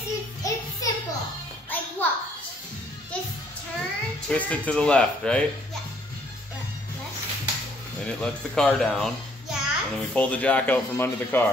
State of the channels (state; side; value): normal; both; correlation 0.64